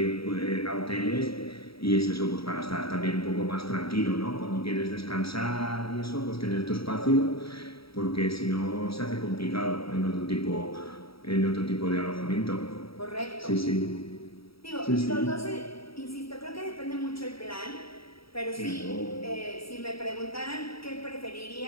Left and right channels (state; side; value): late; right; 0.75 ms